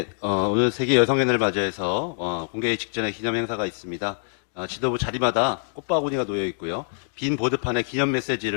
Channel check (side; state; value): right; silent; digital silence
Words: 오늘 세계 여성의 날을 맞이해서 공개회 직전에 기념 행사가 있습니다. 지도부 자리마다 꽃바구니가 놓여 있고요. 빈 보드판에 기념